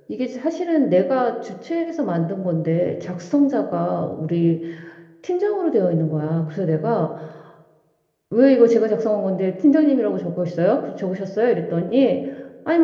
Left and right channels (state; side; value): identical; both; correlation 1.00